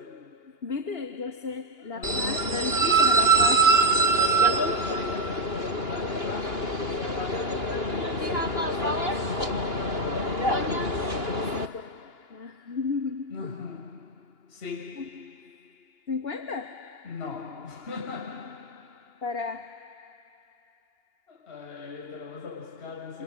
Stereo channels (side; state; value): right; late; 2.8 ms